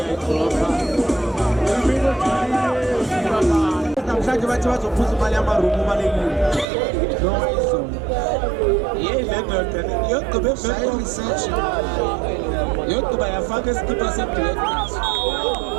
namhlanje bathi bazophuza imali yamarumu balekile noma izolo yeyilendoda yogqiba evele research yogqiba yafaka isikipa se-black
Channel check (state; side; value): drops out; left; at 6.7 s